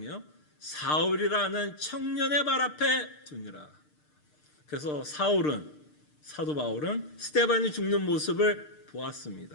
사울이라는 청년의 발 앞에 두니라. 그래서 사도 바울은 스데반이 죽는 모습을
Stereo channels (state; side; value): late; right; 6.6 ms